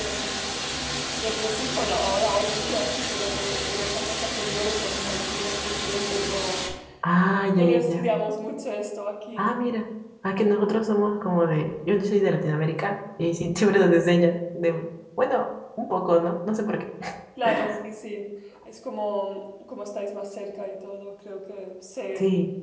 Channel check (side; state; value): both; identical; correlation 1.00